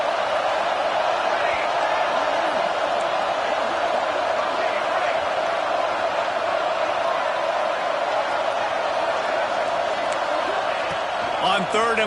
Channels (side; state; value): both; identical; correlation 1.00